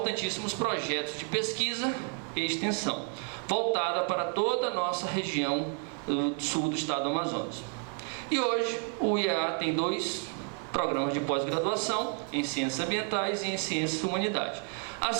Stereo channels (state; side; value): quieter; left; 39.8 dB